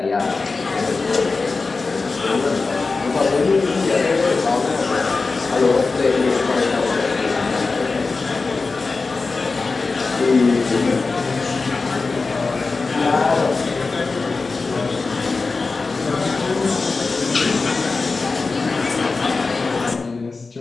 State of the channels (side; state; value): right; quieter; 4.0 dB